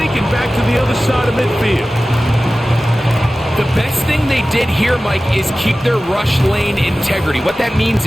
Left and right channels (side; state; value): both; normal; correlation 0.96